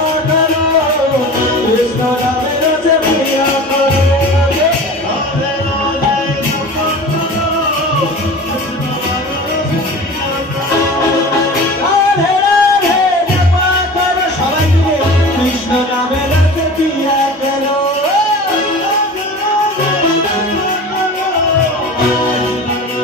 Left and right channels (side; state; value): both; normal; correlation 0.37